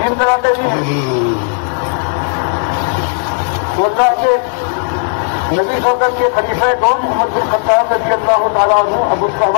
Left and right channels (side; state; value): right; silent; 56 dB below the other